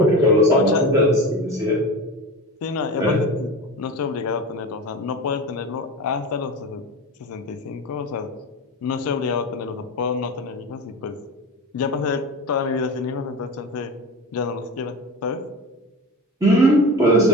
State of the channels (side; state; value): both; normal; correlation 0.30